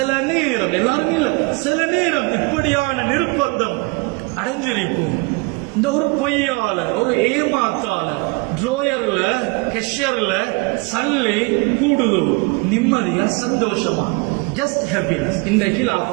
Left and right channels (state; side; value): quieter; left; 29.2 dB